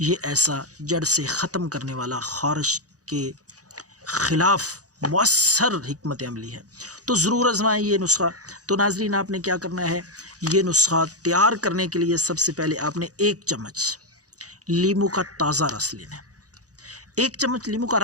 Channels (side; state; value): left; late; 0.67 ms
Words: ایسا جڑ سے ختم کرنے والا خارش کے خلاف مؤثر حکمت عملی ہے، تو ضرور آزمائیں یہ نسخہ۔ تو ناظرین، آپ نے کیا کرنا ہے، یہ نسخہ تیار کرنے کے لیے سب سے پہلے آپ نے 1 چمچ لیمو کا تازہ رس لینا ہے۔ 1 چمچ لیمو کا